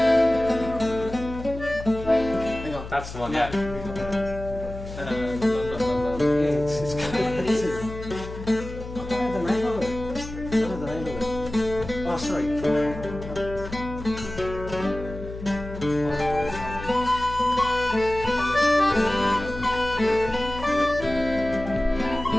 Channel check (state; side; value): noise; left; hum, 11 dB below the sound